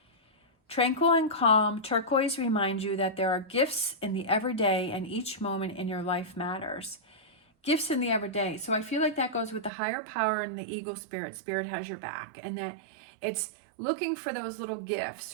Tranquil and calm, turquoise reminds you that there are gifts in the everyday and each moment in your life matters. Gifts in the everyday. So I feel like that goes with the higher power and the eagle spirit. Spirit has your back. And that it's looking for those little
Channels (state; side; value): drops out; left; at 9.7 s